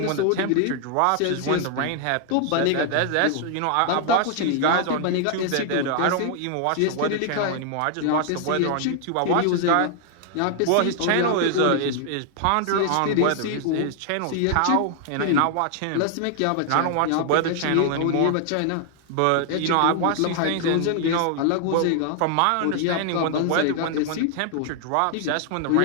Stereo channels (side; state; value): both; different; correlation 0.00